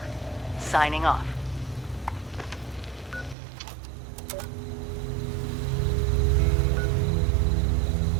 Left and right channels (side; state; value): left; drops out; at 3.4 s